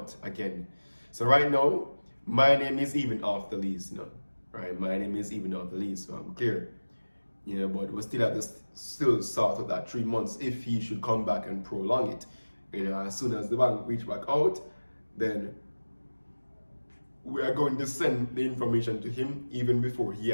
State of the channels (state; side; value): inverted; both; correlation -1.00